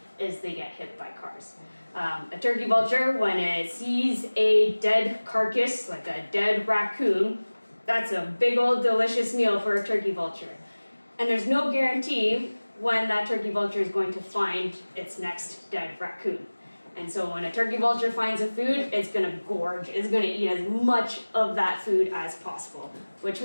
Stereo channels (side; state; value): both; inverted; correlation -1.00